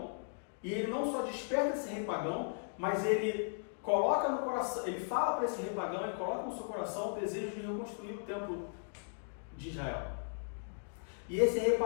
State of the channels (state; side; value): silent; right; digital silence